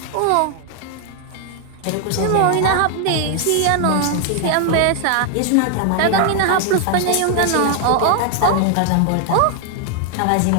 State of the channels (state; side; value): different; both; correlation 0.00